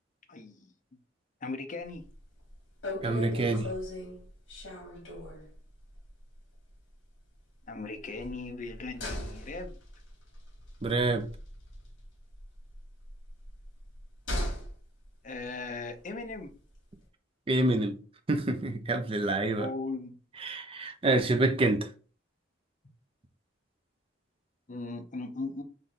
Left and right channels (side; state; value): both; normal; correlation 0.54